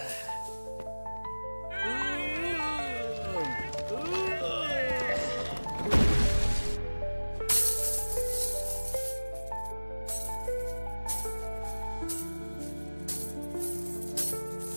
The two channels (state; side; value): inverted; both; correlation -1.00